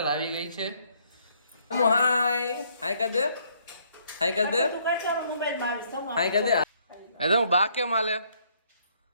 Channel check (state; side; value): inverted; both; correlation -0.68